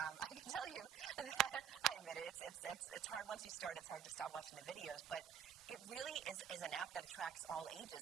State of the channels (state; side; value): quieter; left; 9.2 dB